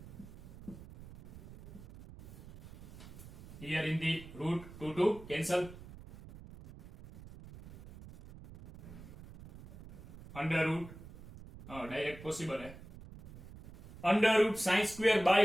Here in the root 2 cancel. Under root direct possible है. Under root sin square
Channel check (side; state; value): right; noise; rumble, 16 dB below the sound